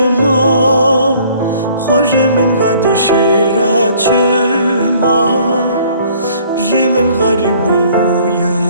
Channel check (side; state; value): both; inverted; correlation -0.57